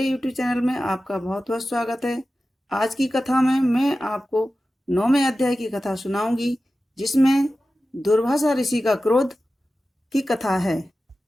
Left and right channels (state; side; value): normal; both; correlation 0.94